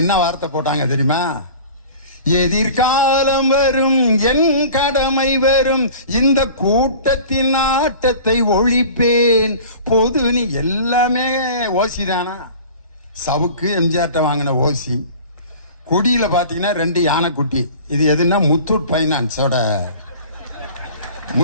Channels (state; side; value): inverted; both; correlation -0.42